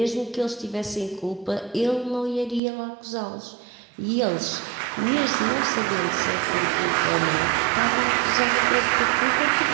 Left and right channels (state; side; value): drops out; left; at 2.6 s